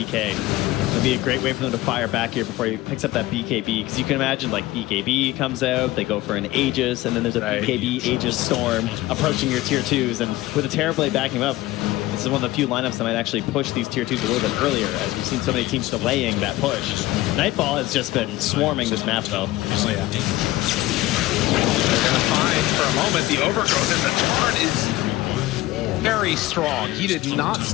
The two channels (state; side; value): quieter; right; 17.5 dB